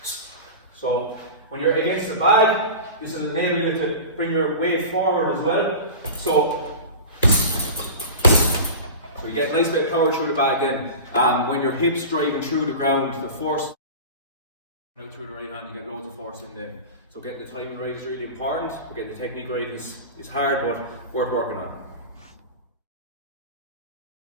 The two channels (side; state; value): both; inverted; correlation -0.31